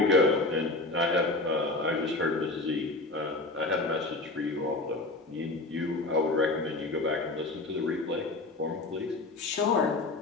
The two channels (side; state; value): right; quieter; 3.1 dB